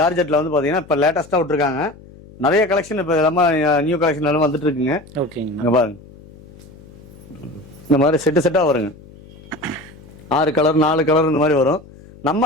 வந்து பாத்தீங்கன்னா இப்ப லேட்டஸ்டா விட்டுருக்காங்க. நிறைய கலெக்ஷன் இப்ப எல்லாமே நியூ கலெக்ஷன் எல்லாம் வந்துட்டு இருக்குங்க. ஓகேங்க. பாருங்க, இந்த மாதிரி செட்டா வருங்க. 6 கலர் 4 கலர் இந்த மாதிரி வரும்.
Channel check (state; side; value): noise; left; hum, 22 dB below the sound